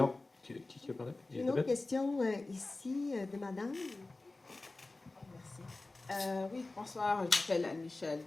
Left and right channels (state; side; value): quieter; right; 3.2 dB